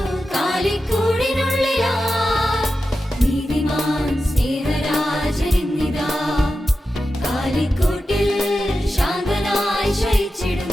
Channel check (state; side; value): normal; both; correlation 0.91